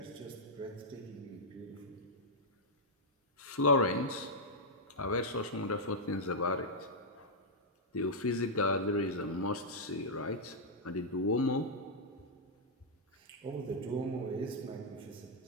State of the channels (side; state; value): both; normal; correlation -0.06